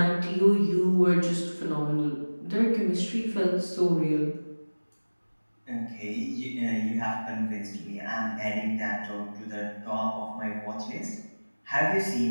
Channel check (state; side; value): inverted; both; correlation -1.00